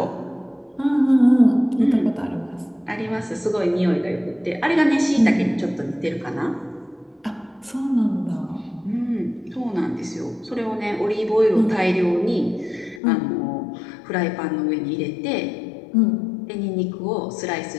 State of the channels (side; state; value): right; drops out; at 13.0 s